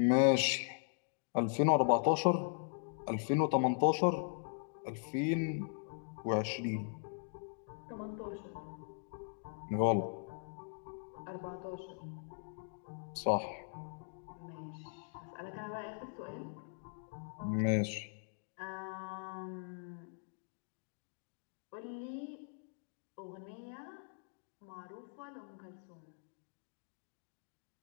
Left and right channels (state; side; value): silent; right; digital silence